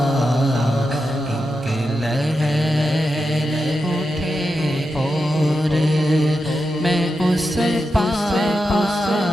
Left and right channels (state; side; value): normal; both; correlation 0.88